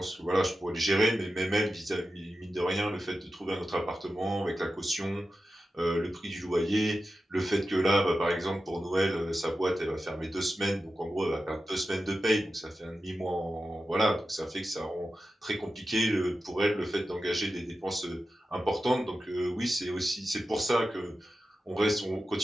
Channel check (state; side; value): normal; both; correlation 0.92